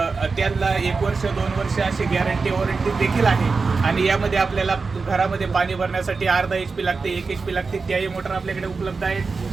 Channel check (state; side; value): quieter; left; 4.5 dB